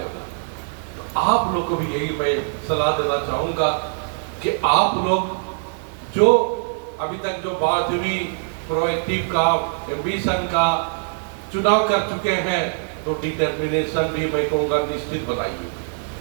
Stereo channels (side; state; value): left; silent; digital silence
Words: था। तो आप लोग को भी यही मैं सलाह देना चाहूंगा कि आप लोग जो अभी तक जो बात हुई प्रोएक्टिव का, एम्बिशन का चुनाव कर चुके हैं, तो डिटर्मिनेशन भी मैं कहूँगा निश्चित बनाइए